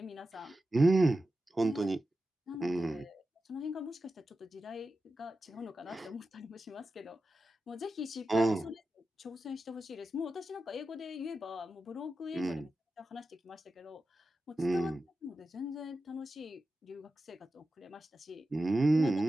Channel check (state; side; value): normal; both; correlation 0.92